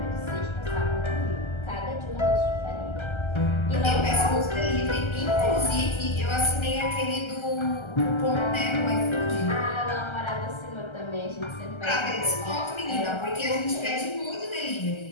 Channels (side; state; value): right; late; 1.3 ms